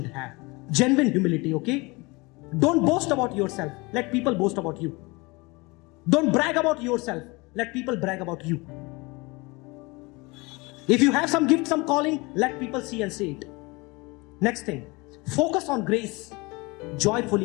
have. Genuine humility, okay? Don't boast about yourself. Let people boast about you. Don't brag about yourself. Let people brag about you. If you have some gift, some calling, let people see and say it. Next thing, focus on grace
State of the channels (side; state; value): right; quieter; 25.3 dB